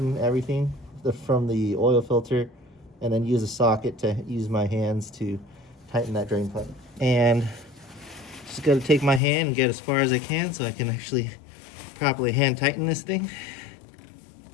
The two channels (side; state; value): right; drops out; at 9.2 s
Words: everything from the oil filter, and then use a socket to use my hands to tighten that drain plug. And just gotta take my hand and get as far as I can so I can actually properly hand tighten this thing.